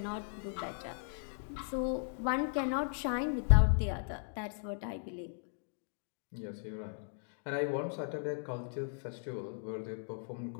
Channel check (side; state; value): right; silent; digital silence